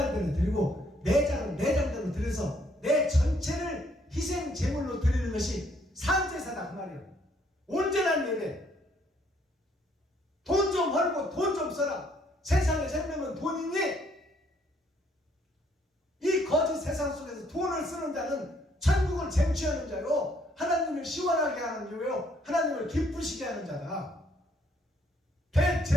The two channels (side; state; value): both; normal; correlation 0.67